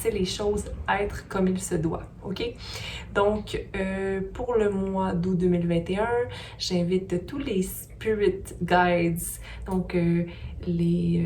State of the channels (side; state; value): both; identical; correlation 1.00